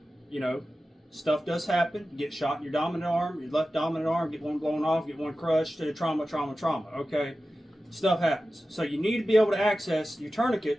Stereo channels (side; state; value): both; normal; correlation 0.94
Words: stuff does happen. You get shot in your dominant arm, your left dominant arm, get one blown off, get one crushed, trauma, okay? Stuff happens. So you need to be able to access your